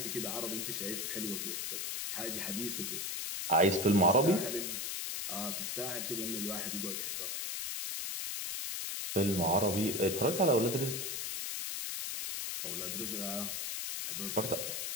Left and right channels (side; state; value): left; noise; hiss, 3 dB below the sound